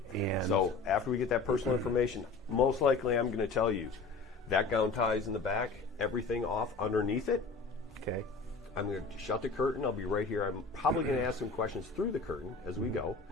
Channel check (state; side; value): quieter; right; 4.1 dB